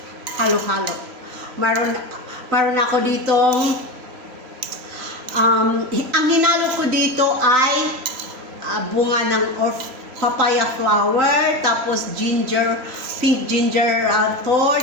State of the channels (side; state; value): left; late; 3.0 ms